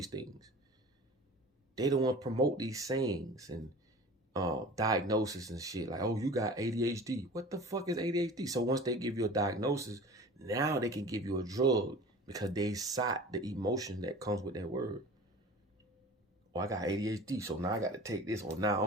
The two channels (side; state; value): both; normal; correlation 0.40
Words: things. They don't want to promote these sayings and diagnosis and shit. Like, oh, you got ADHD. What the fuck is ADHD? So once they give you a diagnosis, now they can give you a drug because they sought the emotion that comes with that word. Oh, I got ADHD, so now I got to take this, or now